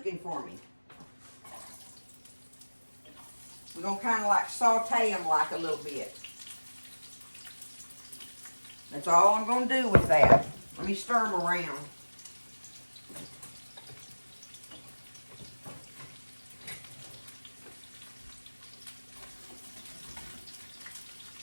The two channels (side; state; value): both; inverted; correlation -1.00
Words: for me. We're going to kind of like saute them like a little bit. That's all I'm going to do with that. Let me stir them around.